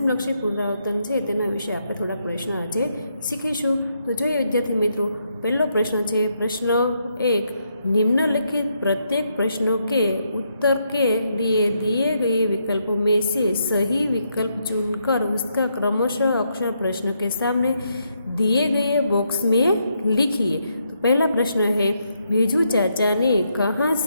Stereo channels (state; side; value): inverted; both; correlation -0.78